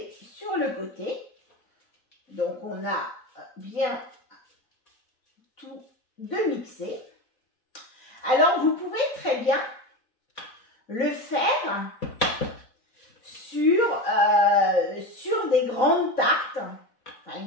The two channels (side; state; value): right; late; 4.1 ms